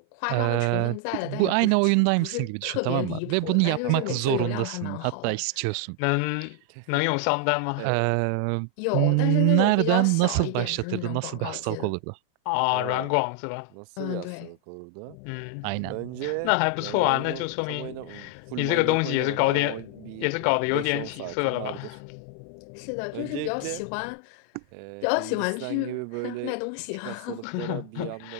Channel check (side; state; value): both; different; correlation 0.00